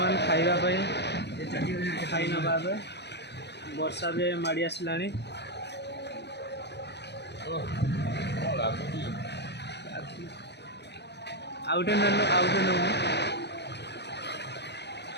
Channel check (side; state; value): right; late; 0.50 ms